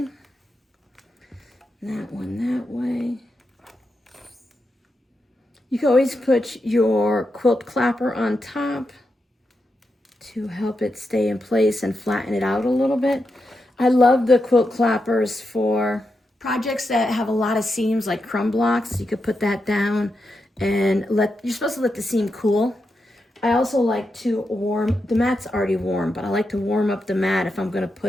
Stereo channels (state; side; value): normal; both; correlation 0.86